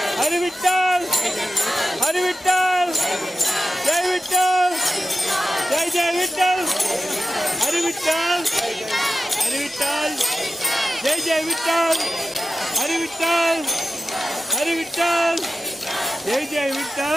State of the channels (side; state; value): both; normal; correlation 0.91